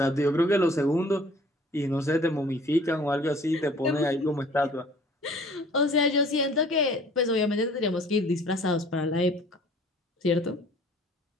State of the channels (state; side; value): normal; both; correlation 0.51